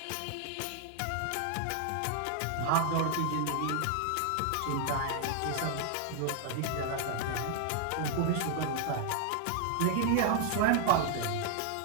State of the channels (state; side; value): different; both; correlation 0.00